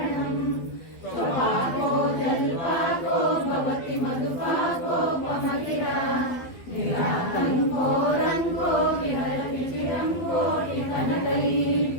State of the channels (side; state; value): right; late; 12 ms